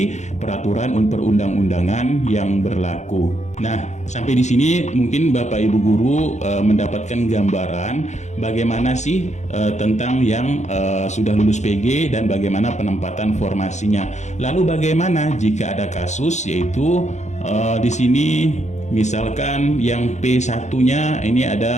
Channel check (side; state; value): right; late; 0.34 ms